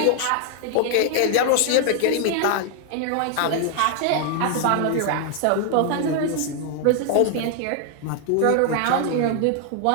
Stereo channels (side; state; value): both; different; correlation 0.00